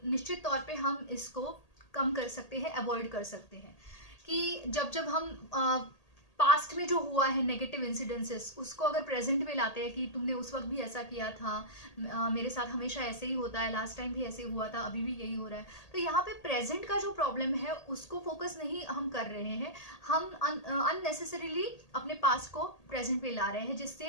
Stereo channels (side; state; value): right; late; 1.8 ms